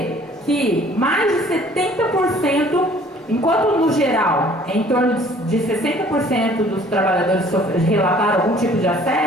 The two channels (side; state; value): both; normal; correlation 0.55